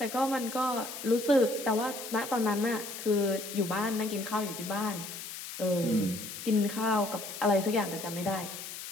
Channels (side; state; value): left; noise; hiss, 9 dB below the sound